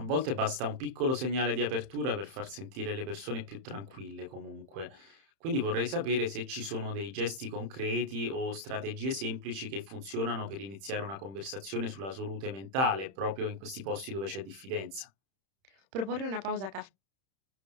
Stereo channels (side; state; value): left; late; 31 ms